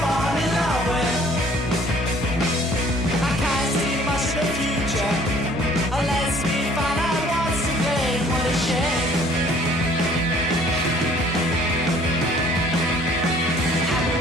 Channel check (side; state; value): both; normal; correlation 0.56